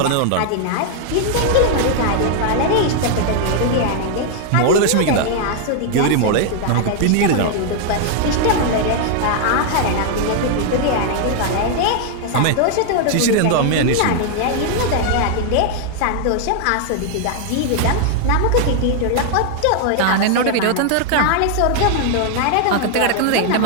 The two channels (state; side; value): different; both; correlation 0.00